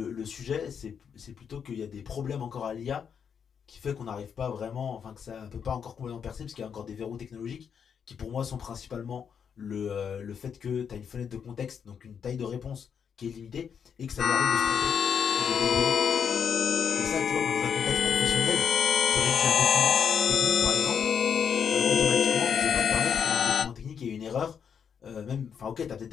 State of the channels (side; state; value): right; quieter; 7.3 dB